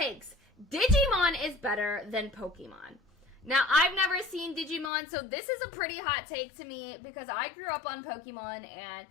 Digimon is better than Pokemon. Now, I've never seen Digimon, so this is a pretty hot take to me because I grew up on Pokemon, and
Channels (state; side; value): drops out; right; at 4.9 s